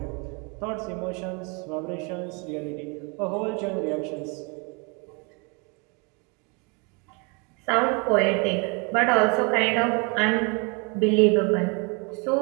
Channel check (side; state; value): left; quieter; 32.2 dB